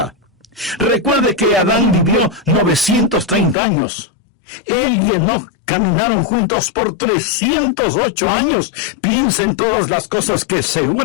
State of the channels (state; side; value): drops out; right; at 3.6 s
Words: Recuerde que Adán vivió 930 años. Él y Enoc caminaron juntos por 308 años. Piensa en todas las cosas que